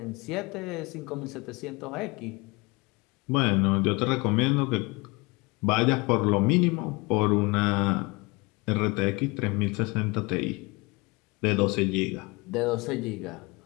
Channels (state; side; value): quieter; right; 26.2 dB